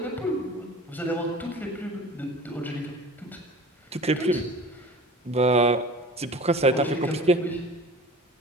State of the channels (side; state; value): both; normal; correlation 0.40